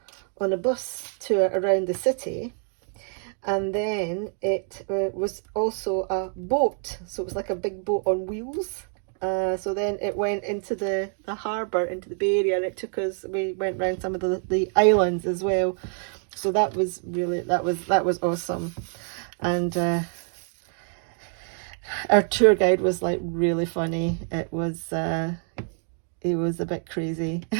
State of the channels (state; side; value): silent; left; 55 dB below the other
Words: a bus tour around the city, and then it was also a boat, so it was like a big boat on wheels. So then it went into the harbour, into the Bay Area, and it took us, we went around some of the islands as well. So that was really, that was awesome. And our tour guide was like really funny. It was a bit crazy.